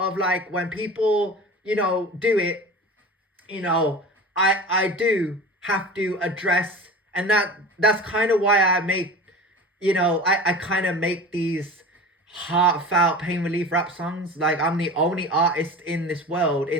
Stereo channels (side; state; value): both; normal; correlation 0.35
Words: like, when people, you know, do it, you know, I do have to address, and that's kind of why I make, you know, I kind of make these heartfelt pain relief rap songs. Like, I'm the only artist in this world,